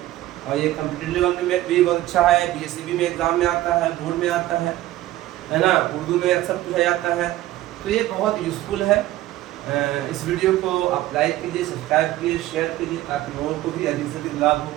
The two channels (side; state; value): left; quieter; 15.3 dB